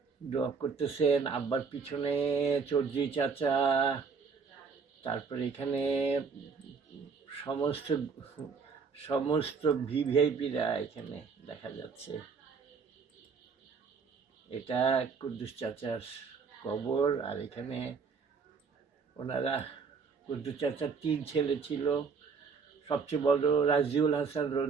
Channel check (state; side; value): quieter; left; 5.4 dB